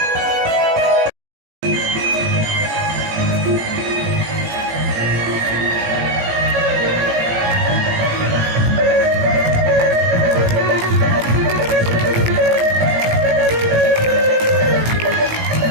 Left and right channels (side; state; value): left; late; 18 ms